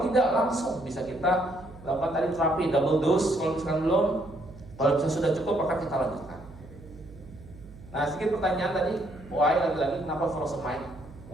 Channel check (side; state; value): right; noise; hum, 18 dB below the sound